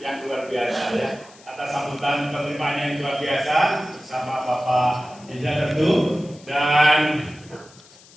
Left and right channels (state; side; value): noise; left; hiss, 24 dB below the sound